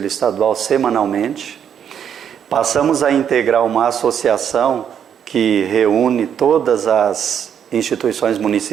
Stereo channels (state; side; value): quieter; left; 8.5 dB